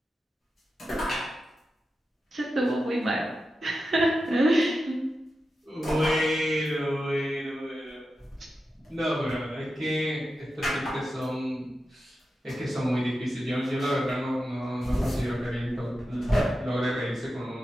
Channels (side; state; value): both; normal; correlation 0.91